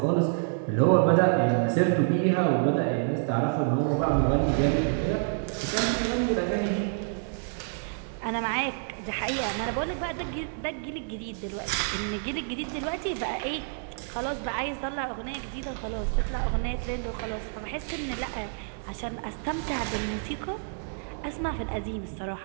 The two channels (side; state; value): left; silent; digital silence